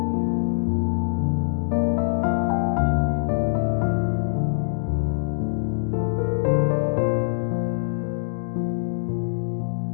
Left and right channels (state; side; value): silent; right; digital silence